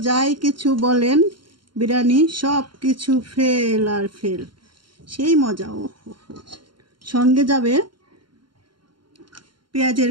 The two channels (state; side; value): late; left; 0.72 ms